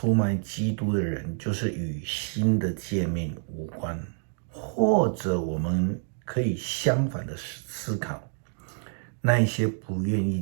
卖基督的人，就是与新的诫命无关。或者我们可以相反的思考，那一些不愿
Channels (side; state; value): left; silent; digital silence